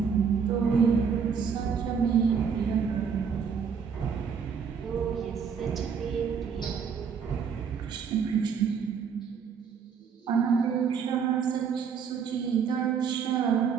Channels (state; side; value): quieter; left; 6.6 dB